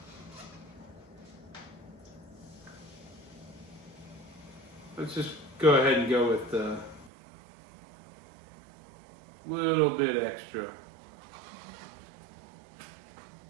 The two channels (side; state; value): left; drops out; at 7.1 s